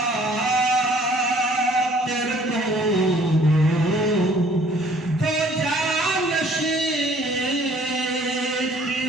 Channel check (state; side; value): normal; both; correlation 0.57